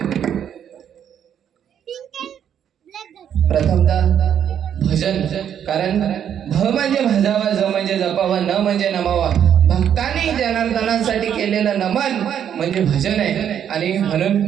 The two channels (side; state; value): left; quieter; 9.1 dB